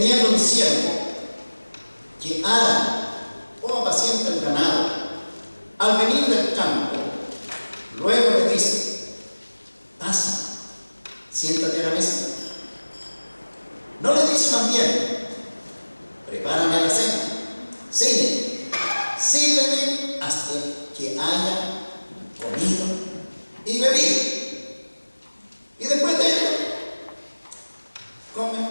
un siervo que ara o apacienta el ganado, al venir del campo, luego le dice: pasa, siéntate a la mesa? ¿No le dice más bien: prepárame la cena, sírveme hasta que haya comido y bebido, y después de ello come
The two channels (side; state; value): both; inverted; correlation -1.00